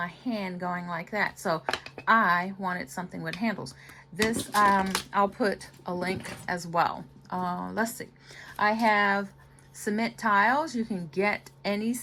hand going like that. So I wanted something with handles. This, I'll put a link as well. Let's see. I have cement tiles. You can get any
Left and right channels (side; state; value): both; identical; correlation 1.00